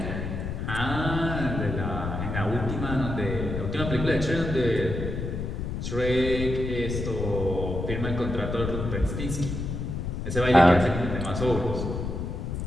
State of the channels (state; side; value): noise; left; rumble, 4 dB below the sound